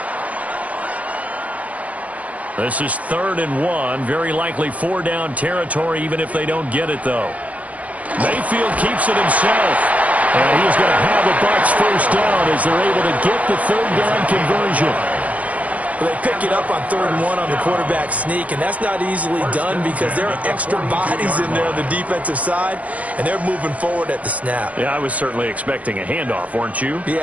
This is 3rd and 1. Very likely 4-down territory, even if they don't get it, though. Mayfield keeps it himself. And he's going to have the Bucs first down as they're able to get the 3rd down conversion. Well, they pick it up on 3rd and 1 on the quarterback sneak, and that's not easily done because there are extra bodies in there on the defensive side, and they're moving forward at the snap. Yeah, I was certainly expecting a handoff, weren't you?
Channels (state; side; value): late; left; 0.069 ms